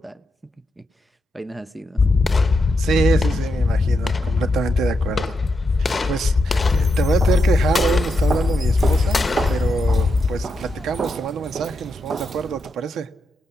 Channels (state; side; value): normal; both; correlation 0.84